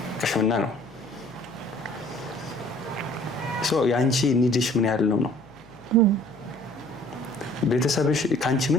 ቅሽምና ነው። የአንቺ ኒድሽ ምን ያህል ነው? ቤተሰብሽ ከአንቺ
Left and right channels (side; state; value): left; noise; hum, 26 dB below the sound